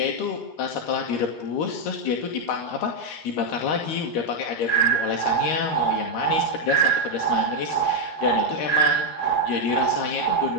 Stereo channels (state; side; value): late; right; 13 ms